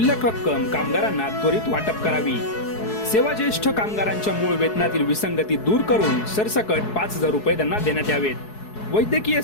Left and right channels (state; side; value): late; right; 4.7 ms